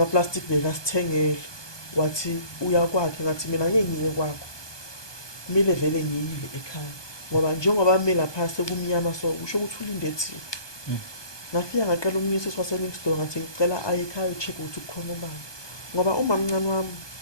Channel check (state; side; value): late; right; 1.2 ms